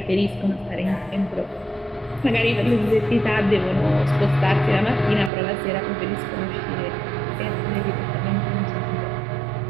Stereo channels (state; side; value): drops out; left; at 5.3 s